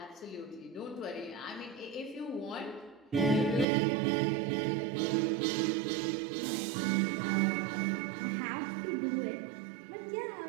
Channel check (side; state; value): left; drops out; at 3.7 s